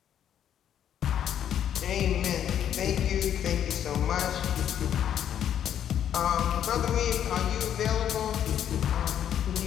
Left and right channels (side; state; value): right; quieter; 9.8 dB